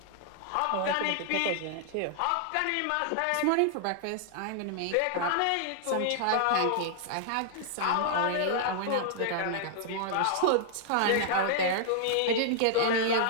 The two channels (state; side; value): different; both; correlation -0.01